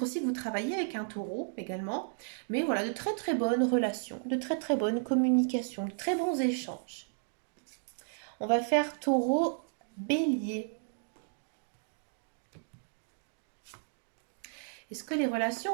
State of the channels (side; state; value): left; silent; digital silence